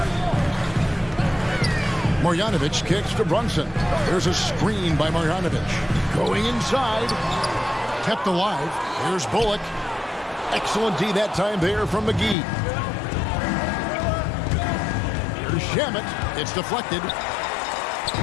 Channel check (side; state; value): right; drops out; at 12.4 s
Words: Marjanovic kicks to Brunson. There's a screen by Marjanovic. Going inside. Kept alive. Here's Bullock. Excellent D that time there from McGee. Here's Shamet. It's deflected.